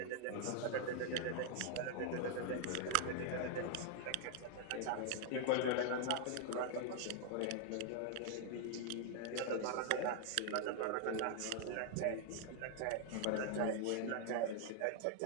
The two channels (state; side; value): different; both; correlation 0.00